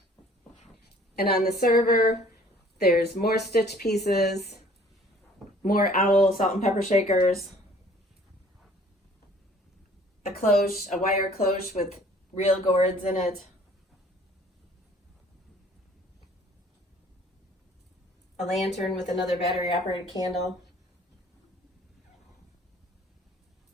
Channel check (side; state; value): both; normal; correlation 0.54